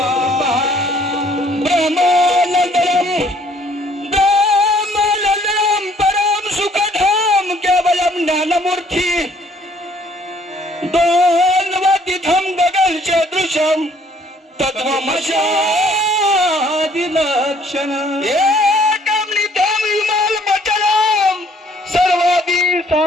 दोन्वतिथं गगनसदृशं तत्त्वमस्यादिलक्षणम् एकं नित्यं विमलमचलं सर्वादि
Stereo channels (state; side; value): normal; both; correlation 0.61